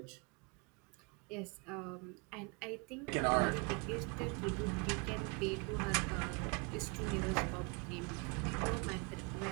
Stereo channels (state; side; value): quieter; left; 32.7 dB